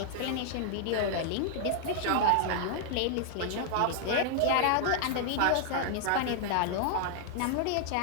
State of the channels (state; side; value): different; both; correlation -0.01